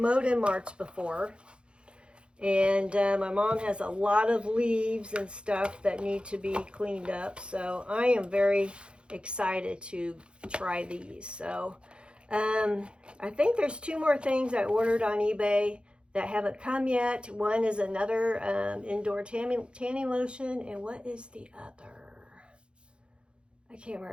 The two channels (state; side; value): late; left; 0.055 ms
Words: in March before, and my mom has a lot of leaves and stuff that need to be cleaned up. So I am very excited to try these. So I think there's 2 more things I ordered on eBay that haven't come yet. One is another indoor tanning lotion, and what is the other? I can't